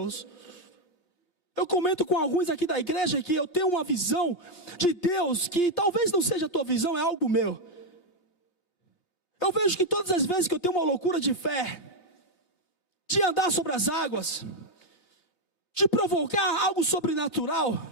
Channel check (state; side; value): late; right; 2.6 ms